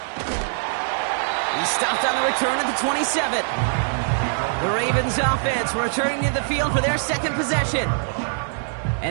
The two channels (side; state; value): left; silent; digital silence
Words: stopped on the return at the 27. The Ravens offense returning to the field for their 2nd possession.